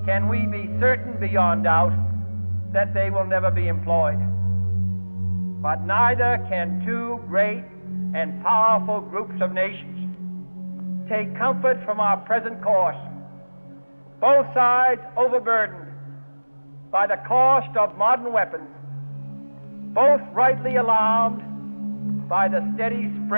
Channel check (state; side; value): inverted; both; correlation -1.00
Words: can we be certain beyond doubt that they will never be employed. But neither can two great and powerful groups of nations take comfort from our present course, both sides overburdened by the cost of modern weapons, both rightly alarmed by the steady